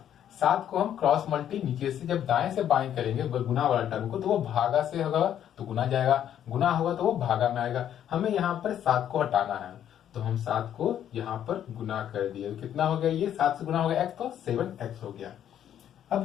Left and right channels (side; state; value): right; quieter; 10.2 dB